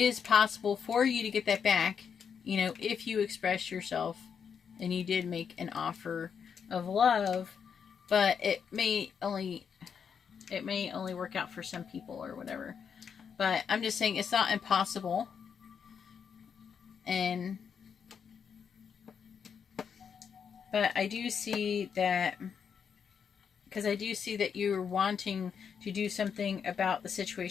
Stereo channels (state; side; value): quieter; right; 7.0 dB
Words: possible for you to get that back, you know, if you express yourself and you did make an offer of love, but it may only work out for some people or whatever. But I'm just saying it's not impossible. But I do see that, because I do see that you're wanting to do something about the